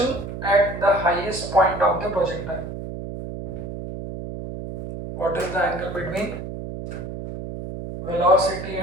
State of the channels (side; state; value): right; noise; hum, 8 dB below the sound